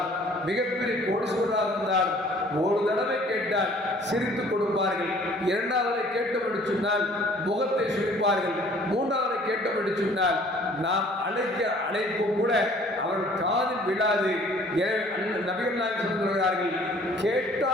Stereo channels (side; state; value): both; normal; correlation 0.55